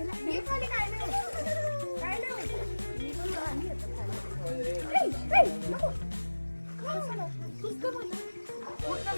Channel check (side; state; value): both; inverted; correlation -1.00